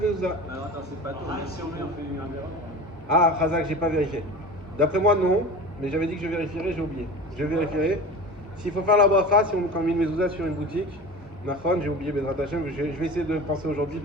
Alors attends, c'est pas tout. Si on fait un verre. Ah, Razak, j'ai pas vérifié. D'après moi, non, mais j'avais dit que je vérifierais, j'ai oublié. Je vérifierai. S'il faut faire la bracha, si on met une mezouza sur une boutique, Nafon, j'ai oublié Bezrat Hashem, je vais essayer de penser aujourd'hui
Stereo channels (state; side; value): normal; both; correlation 0.34